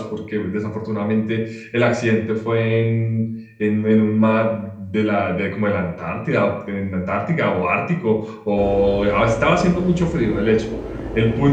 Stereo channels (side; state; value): both; identical; correlation 1.00